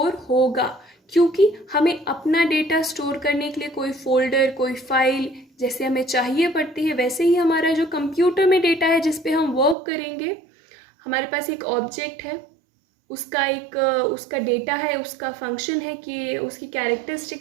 होगा, क्योंकि हमें अपना डेटा स्टोर करने के लिए कोई फोल्डर, कोई फाइल जैसे हमें चाहिए पड़ती है, वैसे ही हमारा जो कंप्यूटर में डेटा है जिस पे हम वर्क करेंगे, हमारे पास एक ऑब्जेक्ट है, उसका डेटा है, उसका फंक्शन है कि उसकी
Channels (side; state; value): left; drops out; at 9.8 s